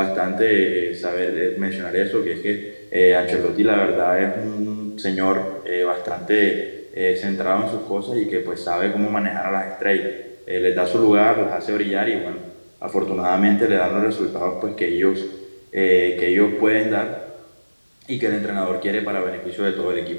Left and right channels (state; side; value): inverted; both; correlation -1.00